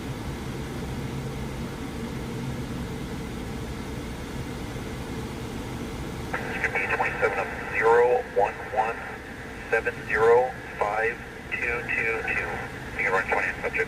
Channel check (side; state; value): both; identical; correlation 1.00